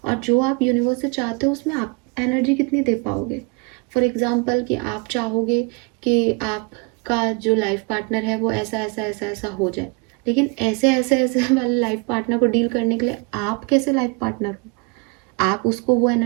और जो आप यूनिवर्स से चाहते हो उसमें आप एनर्जी कितनी दे पाओगे। फॉर एग्जाम्पल कि आप चाहोगे कि आपका जो लाइफ पार्टनर है वो ऐसा ऐसा ऐसा ऐसा हो जाए, लेकिन ऐसे ऐसे ऐसे वाले लाइफ पार्टनर को डील करने के लिए आप कैसे लाइफ पार्टनर हो, आप उसको वो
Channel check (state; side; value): quieter; left; 31.5 dB